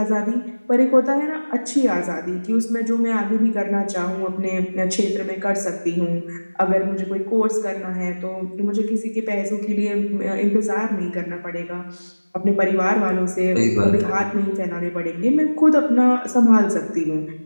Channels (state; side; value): inverted; both; correlation -1.00